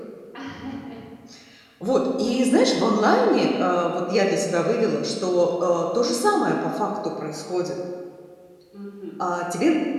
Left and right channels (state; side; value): identical; both; correlation 1.00